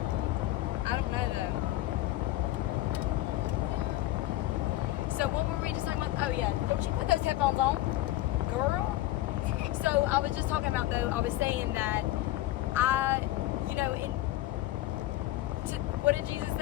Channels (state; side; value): quieter; right; 15.9 dB